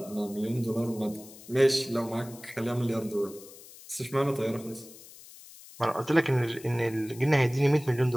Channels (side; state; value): left; noise; hiss, 19 dB below the sound